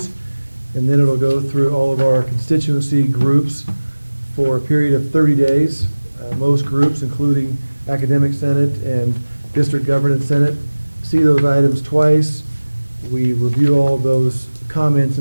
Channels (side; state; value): both; inverted; correlation -1.00